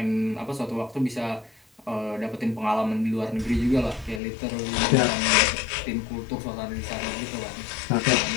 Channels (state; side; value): drops out; right; at 4.2 s